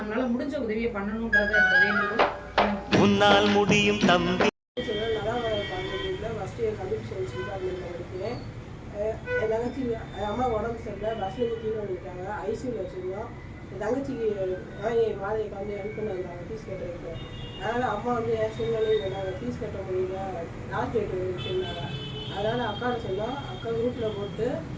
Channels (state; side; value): identical; both; correlation 1.00